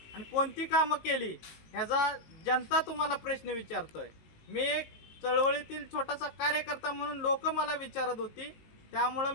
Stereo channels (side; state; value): right; late; 19 ms